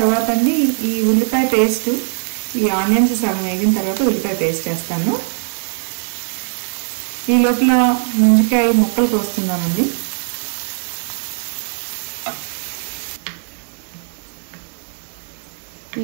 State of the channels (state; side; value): silent; left; 65 dB below the other